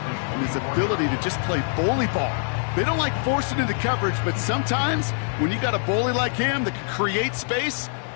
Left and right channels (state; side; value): silent; right; 62 dB below the other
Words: his ability to just play bully ball. They don't like forcing into coverage, but sometimes when you got a bully like him that can create space,